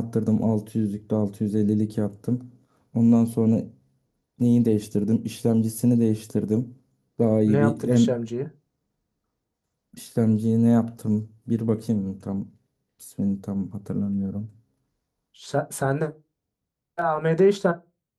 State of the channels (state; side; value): identical; both; correlation 1.00